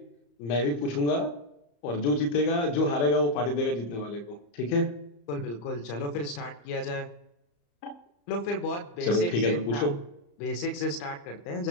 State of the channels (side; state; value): right; late; 35 ms